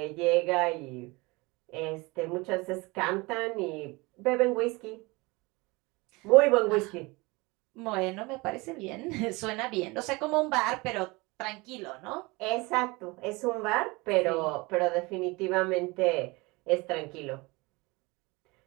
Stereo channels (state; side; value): quieter; left; 24.4 dB